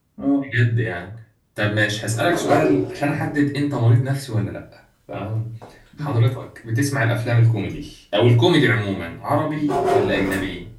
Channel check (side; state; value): both; identical; correlation 1.00